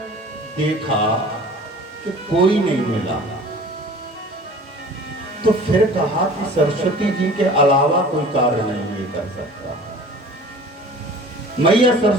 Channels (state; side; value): normal; both; correlation 0.44